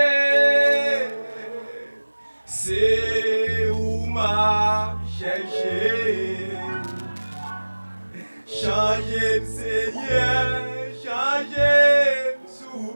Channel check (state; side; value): inverted; both; correlation -1.00